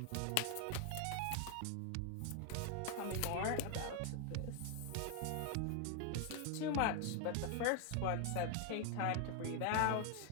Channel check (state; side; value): different; both; correlation 0.01